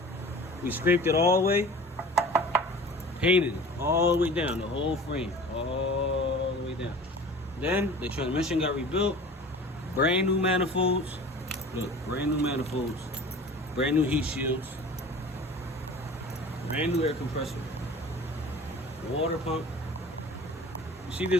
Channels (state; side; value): normal; both; correlation 0.41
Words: We scraped it all the way, painted it all the way down, the whole frame, all the way down. Then the transmission got rebuilt, brand new manifolds. Look, brand new manifolds, brand new heat shields, brand new air compressor, water pump. You see